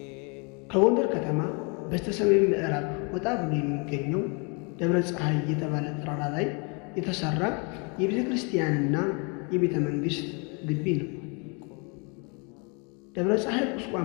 ከጎንደር ከተማ በስተሰሜን ምዕራብ ወጣ ብሎ የሚገኘው ደብረ ፀሐይ የተባለ ተራራ ላይ የተሰራ የቤተ ክርስቲያንና የቤተ መንግሥት ግቢ ነው። ደብረ ፀሐይ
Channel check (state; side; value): quieter; right; 33.8 dB